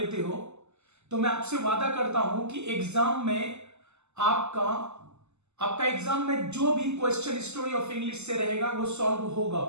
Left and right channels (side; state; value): left; late; 0.82 ms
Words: हो, तो मैं आपसे वादा करता हूं कि एग्जाम में आपका एग्जाम में जो भी क्वेश्चन स्टोरी ऑफ इंग्लिश से रहेगा वो सॉल्व होगा,